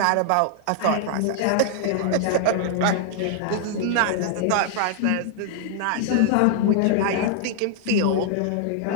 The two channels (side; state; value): both; different; correlation 0.00